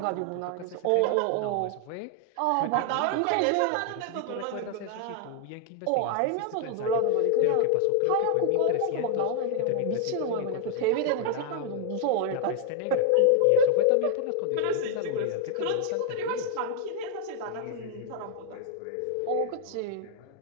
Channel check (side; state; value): both; different; correlation 0.00